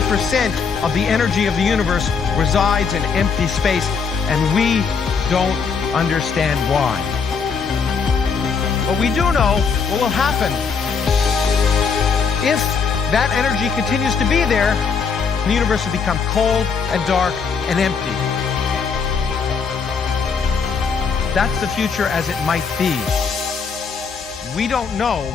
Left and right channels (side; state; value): right; quieter; 5.7 dB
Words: of the energy of the universe resides in empty space, and we don't understand why. But we do know what will happen. If that energy continues to be there, the universe will become cold and dark and empty. That's the future as it might be. We don't know